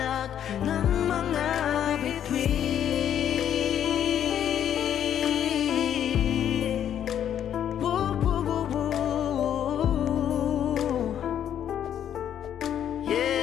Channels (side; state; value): right; quieter; 9.8 dB